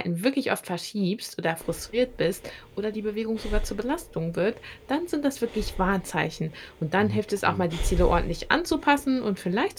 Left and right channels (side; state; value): both; identical; correlation 1.00